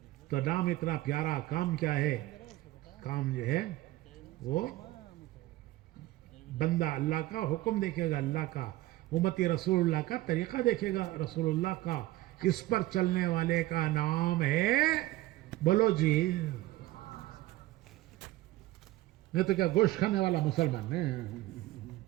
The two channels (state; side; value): quieter; left; 17.2 dB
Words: تو نام اتنا پیارا, کام کیا ہے؟ کام جو ہے وہ بندہ اللہ کا, حکم دیکھے گا اللہ کا, امتی رسول اللہ کا, طریقہ دیکھے گا رسول اللہ کا. اس پر چلنے والے کا نام ہے, بولو جی. نہیں تو کیا گوشت کھانے والا مسلمان ہے؟